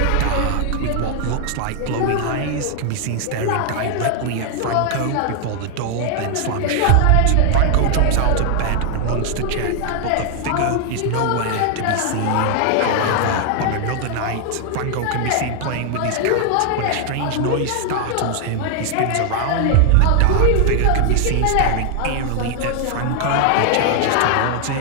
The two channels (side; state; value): both; different; correlation 0.00